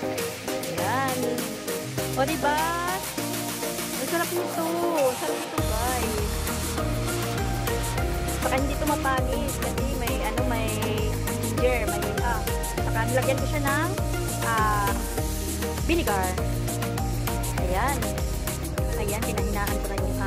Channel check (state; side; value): identical; both; correlation 1.00